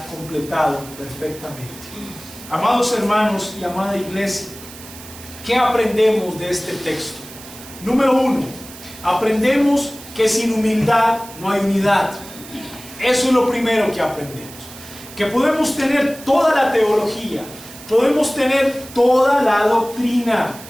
completado perfectamente. Amados hermanos y amada iglesia, ¿qué aprendemos de este texto? Número 1, aprendemos que sin humildad no hay unidad. Eso es lo primero que aprendemos. Que podemos tener toda la teología, podemos tener toda la doctrina,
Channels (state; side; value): noise; right; hiss, 16 dB below the sound